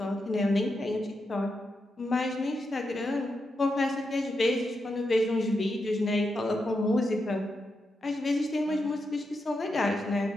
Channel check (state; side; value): normal; both; correlation 0.86